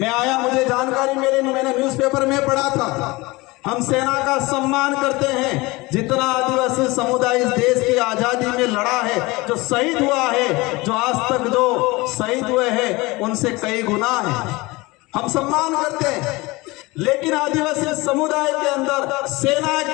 आया, मुझे जानकारी मिली, मैंने न्यूज़पेपर में पढ़ा था। हम सेना का सम्मान करते हैं, जितना आदिवासी समुदाय इस देश की आजादी में लड़ा है, जो शहीद हुआ है, जो आज तक जो शहीद हुए हैं उनसे कई गुना है, हम सम्मान करते हैं। लेकिन आदिवासी समुदाय के अंदर सेना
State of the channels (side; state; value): right; quieter; 22.7 dB